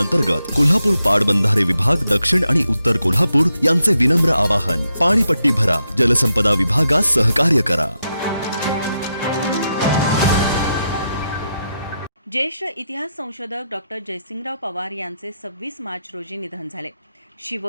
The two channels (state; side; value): inverted; both; correlation -0.84